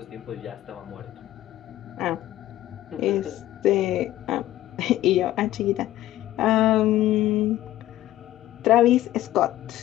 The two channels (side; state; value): right; quieter; 14.5 dB